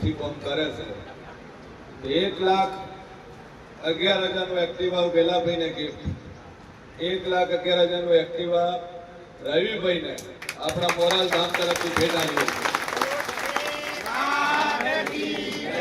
કામ કરે છે. 1,11,000નું એક્ટિવા વેલાભાઈને ગિફ્ટ, 1,11,000નું એક્ટિવા રવિભાઈને આપણા મોરાલ ધામ તરફથી ભેટ આવ્યું.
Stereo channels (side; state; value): both; identical; correlation 1.00